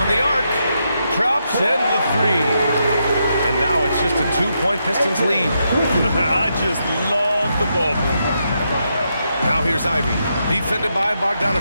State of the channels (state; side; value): inverted; both; correlation -0.82